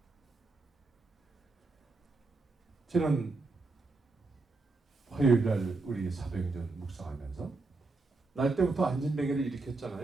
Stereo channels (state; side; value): quieter; left; 3.5 dB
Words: 지난 화요일 날 우리 사도행전 묵상하면서 날 때부터 안진뱅이를